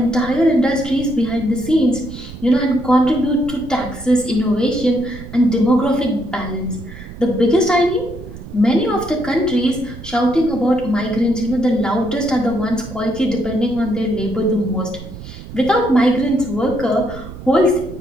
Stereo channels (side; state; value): right; noise; rumble, 14 dB below the sound